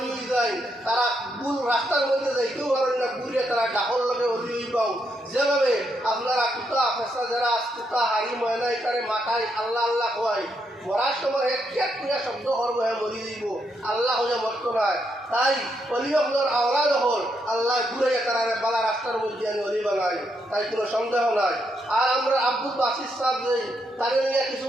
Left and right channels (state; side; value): normal; both; correlation 0.79